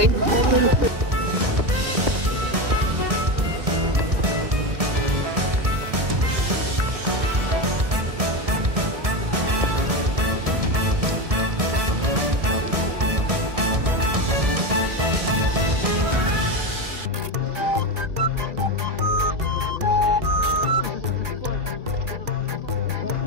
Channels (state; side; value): late; left; 1.6 ms